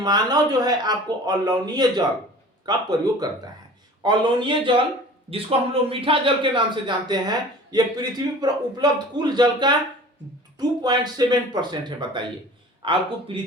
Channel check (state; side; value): normal; both; correlation 0.43